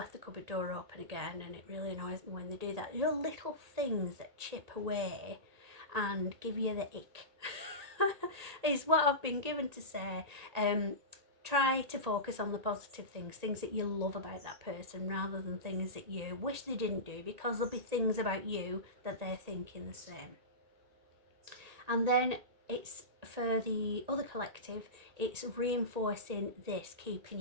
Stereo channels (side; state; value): left; late; 1.8 ms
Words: the cupboard door open again, and it really annoys me when they do that. There are little things that chip away and give you the ick is what I've been given to say. try to focus on the positive things that you love about that person, rather than things that you wish they didn't do, because there'll be things about you that they're thinking the same. And then it's for the other collective, it's reinforcing this, keeping